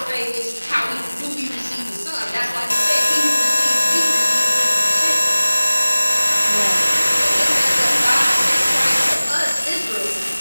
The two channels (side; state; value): both; inverted; correlation -1.00